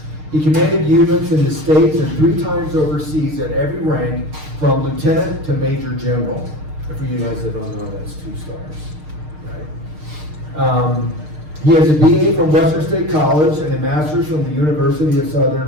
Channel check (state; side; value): late; left; 6.5 ms